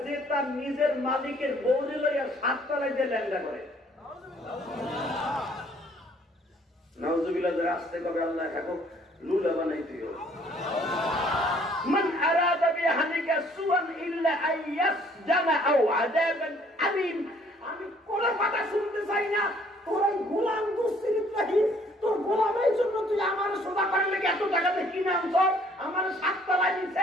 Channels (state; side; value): normal; both; correlation 0.60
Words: যে তার নিজের মালিকের বউরে লইয়া 7 তলায় যে ল্যাংড়া করে। নাউজুবিল্লাহ, আসতে কবে আল্লাহ এখন লুলা বানাই দিও। মান আরাদা বিহালিকা সুআন ইল্লা আইয়াসজানা আও আযাবান আলীম। আমি কোন কথা শুনতে চাই না। তোর গোলাম দুশ্চিন্তাহীন, তোর গোলামের জন্য তুই আমার সেবা করলে এত টাকাতে কিনে আনছ, আমার 7 তলায়